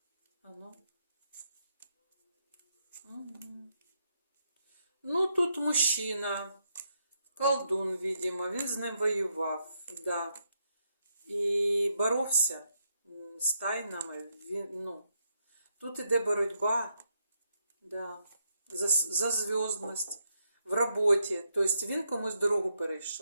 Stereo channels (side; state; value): both; inverted; correlation -0.78